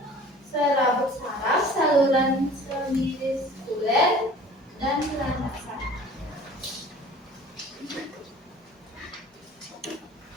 serabut saraf, saluran semiskuler, dan landasan.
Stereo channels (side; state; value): both; normal; correlation 0.46